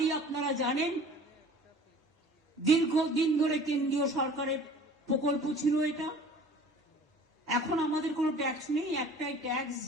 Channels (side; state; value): both; normal; correlation 0.46